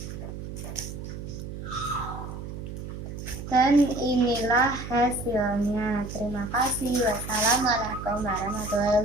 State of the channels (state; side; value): noise; right; hum, 9 dB below the sound